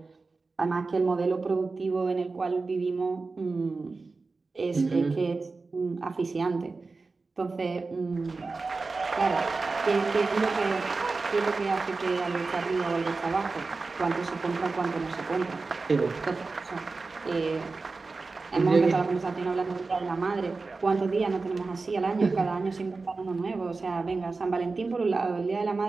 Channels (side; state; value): left; quieter; 3.9 dB